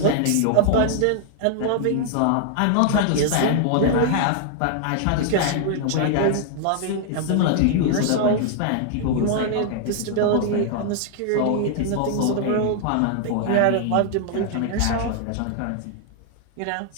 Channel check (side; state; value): both; different; correlation -0.01